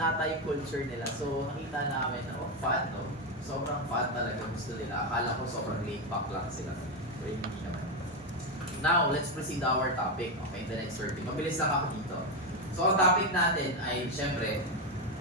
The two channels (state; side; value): normal; both; correlation 0.08